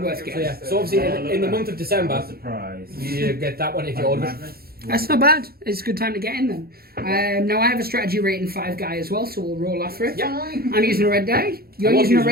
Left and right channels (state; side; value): late; left; 0.44 ms